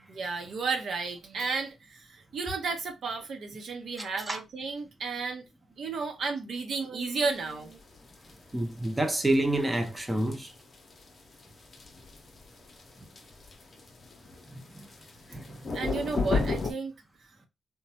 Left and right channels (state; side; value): normal; both; correlation 0.84